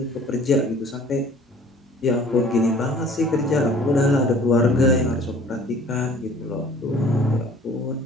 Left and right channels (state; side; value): normal; both; correlation 0.51